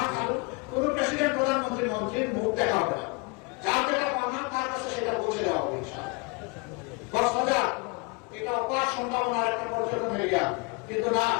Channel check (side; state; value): right; quieter; 29.7 dB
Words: খালু, কোন প্রেসিডেন্ট প্রধানমন্ত্রী মন্ত্রীর মুখ দেখা হবে না। যার যেটা পাওনা তার কাছে সেটা পৌঁছে দেওয়া হবে ইনশাআল্লাহ। কক্সবাজার এটা অপার সম্ভাবনার একটা পর্যটন এরিয়া, কিন্তু না